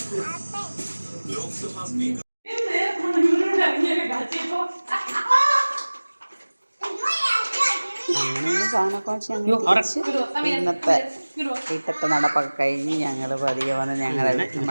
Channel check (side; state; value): both; inverted; correlation -1.00